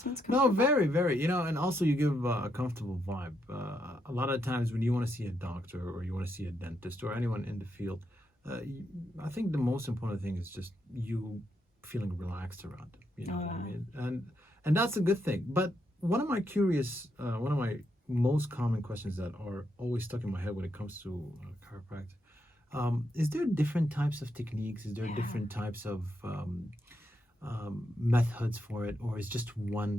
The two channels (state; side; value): normal; both; correlation 0.80